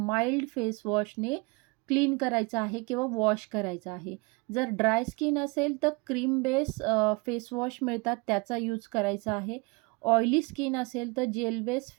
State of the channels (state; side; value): quieter; left; 28.3 dB